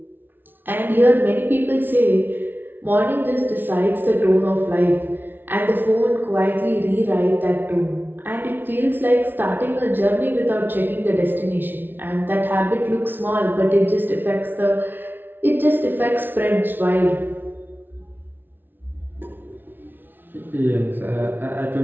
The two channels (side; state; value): left; late; 0.097 ms